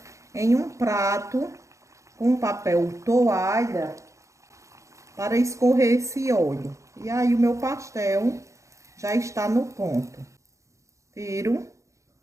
em um prato com papel toalha para escorrer esse óleo. E aí o meu pastel já está no ponto. Tiro,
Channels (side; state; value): left; late; 0.15 ms